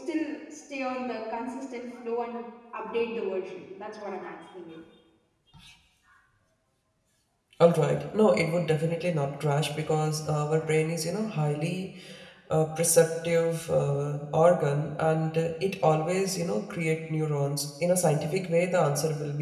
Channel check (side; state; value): both; identical; correlation 1.00